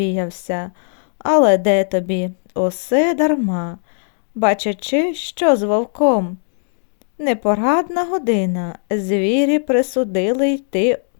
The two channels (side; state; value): right; silent; digital silence